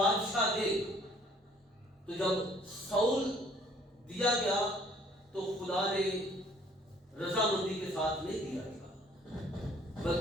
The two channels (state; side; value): normal; both; correlation 0.58